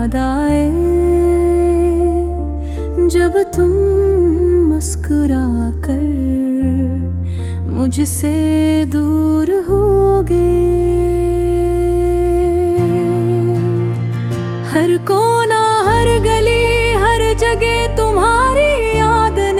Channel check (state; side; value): identical; both; correlation 1.00